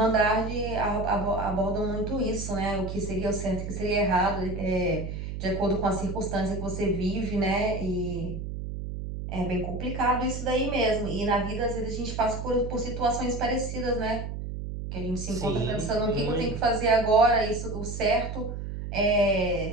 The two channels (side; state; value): right; noise; hum, 6 dB below the sound